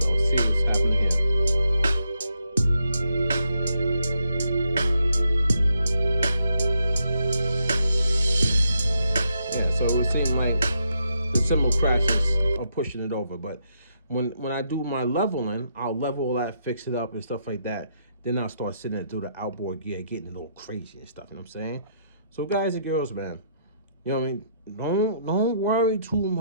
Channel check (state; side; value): inverted; both; correlation -0.77